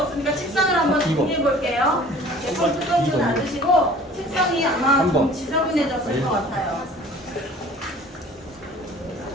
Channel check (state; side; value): normal; both; correlation 0.48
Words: 책상을 한번 정리해 볼게요. 제품 뚜껑 좀 닫으시고 책상이 아마 좀 지저분해졌을 것 같아요.